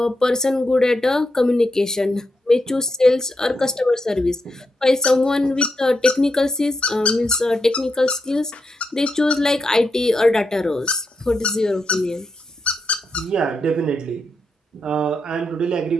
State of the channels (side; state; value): both; normal; correlation 0.84